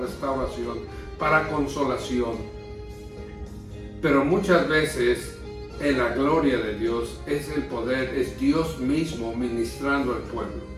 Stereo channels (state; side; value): identical; both; correlation 1.00